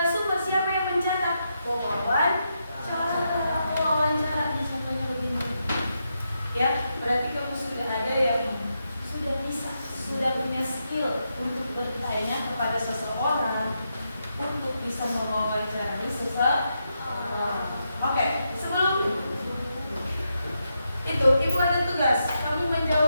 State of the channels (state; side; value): inverted; both; correlation -0.84